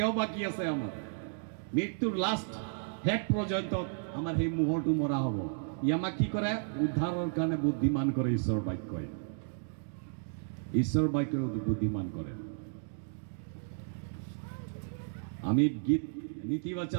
বাকী আছে আমাৰ, মৃত্যুৰ লাষ্ট হেড পৰ্যন্ত আমাৰ সেই মোহৰটো মৰা হ'ব। ই আমাক কি কৰে? উদ্ধাৰৰ কাৰণে বুদ্ধিমান কৰে ঈশ্বৰ বাক্যই। ঈশ্বৰ বাক্যই বুদ্ধিমান কৰে। আমি গীত নীতি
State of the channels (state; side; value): silent; left; digital silence